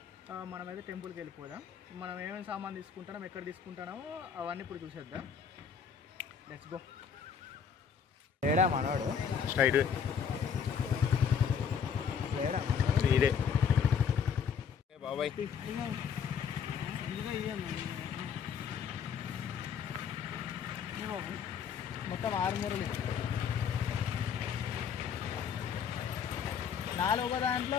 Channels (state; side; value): quieter; right; 7.1 dB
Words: మనమైతే టెంపుల్కి వెళ్ళిపోదాం. మనం ఏమేమి సామాన్ తీసుకుంటామో, ఎక్కడ తీసుకుంటామో అవన్నీ ఇప్పుడు చూసేద్దాం. Let's go. లేడా మనోడు? స్ట్రైట్ లేడా ఇదే బాబాయ్. మొత్తం 6 మూరలు, 4 ఒక దాంట్లో